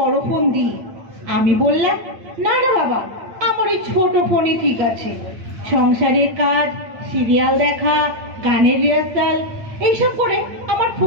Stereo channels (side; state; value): left; late; 8.9 ms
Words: ফোন দিই। আমি বললাম, না না বাবা, আমার ওই ছোট ফোনই ঠিক আছে। সংসারের কাজ, সিরিয়াল দেখা, গানের রিহার্সাল এইসব করে আমার